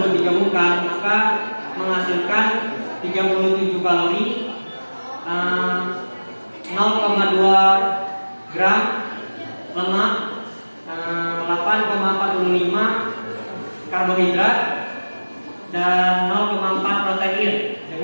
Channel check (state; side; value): inverted; both; correlation -1.00